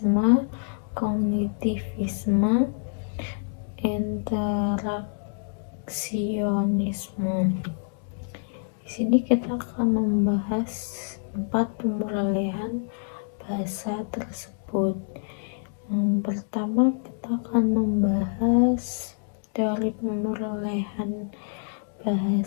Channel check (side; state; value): right; silent; digital silence